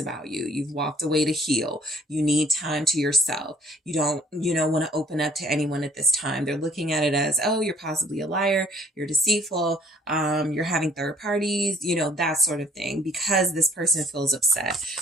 you. You've walked away to heal. You need time to yourself. You don't want to open up to anyone at this time. They're looking at it as, oh, you're possibly a liar. You're deceitful. You're having third parties, that sort of thing, because this person feels upset.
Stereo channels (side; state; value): both; normal; correlation 0.58